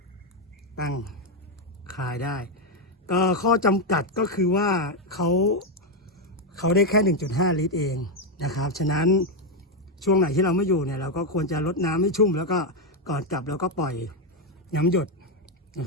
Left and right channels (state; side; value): normal; both; correlation 0.04